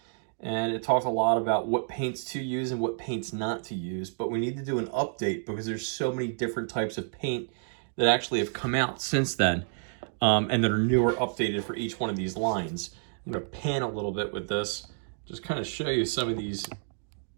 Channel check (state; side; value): silent; left; digital silence